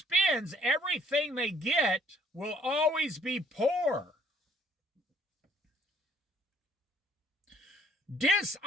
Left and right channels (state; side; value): normal; both; correlation 0.62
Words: everything they get will always be poor.